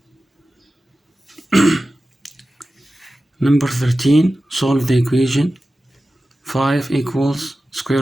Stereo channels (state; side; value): normal; both; correlation 0.94